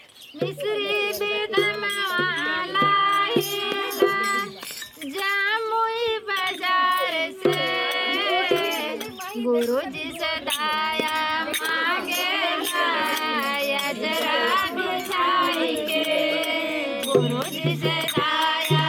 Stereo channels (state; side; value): identical; both; correlation 1.00